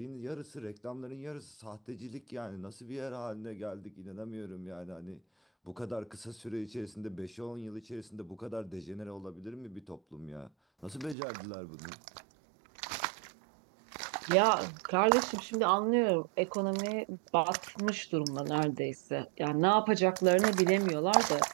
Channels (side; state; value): left; drops out; at 11.2 s